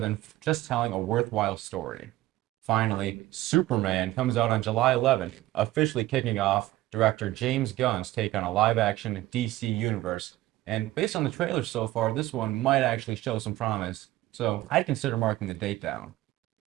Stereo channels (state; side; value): quieter; left; 16.5 dB